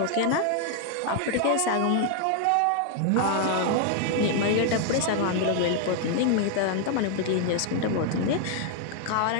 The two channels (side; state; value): both; different; correlation 0.00